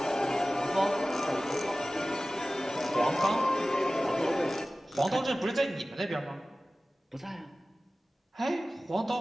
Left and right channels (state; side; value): normal; both; correlation 0.97